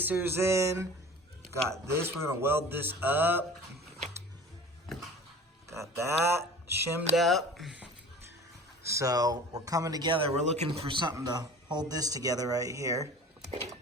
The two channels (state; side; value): normal; both; correlation 0.41